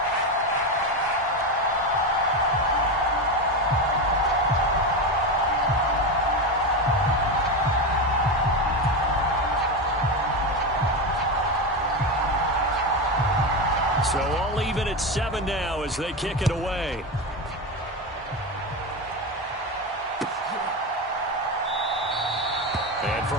So all even at 7 now as they kick it away. And from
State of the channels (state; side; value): normal; both; correlation 0.16